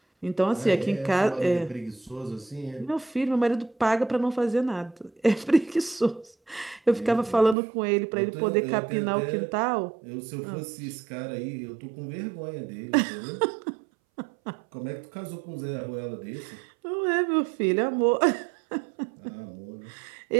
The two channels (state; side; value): drops out; left; at 7.6 s